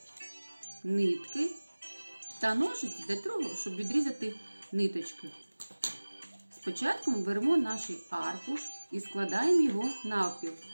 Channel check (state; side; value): inverted; both; correlation -1.00